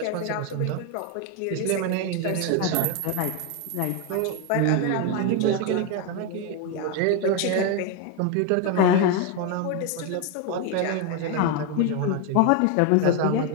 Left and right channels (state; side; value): different; both; correlation 0.02